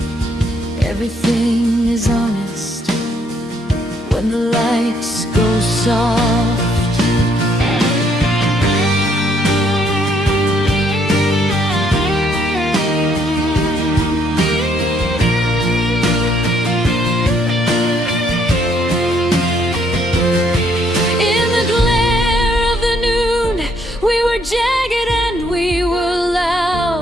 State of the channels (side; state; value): both; normal; correlation 0.69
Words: Everything is honest when the lights go soft. In the glare of the noon, we were jagged and we were